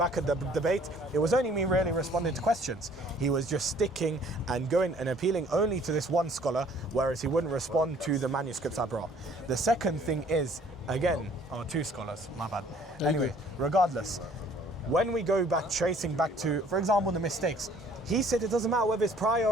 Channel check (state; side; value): normal; both; correlation 0.57